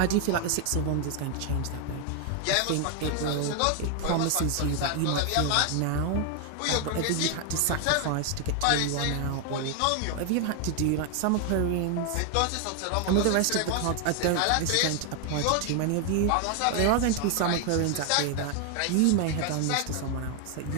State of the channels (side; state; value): both; different; correlation 0.00